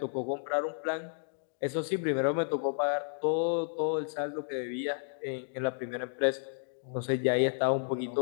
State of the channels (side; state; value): right; silent; digital silence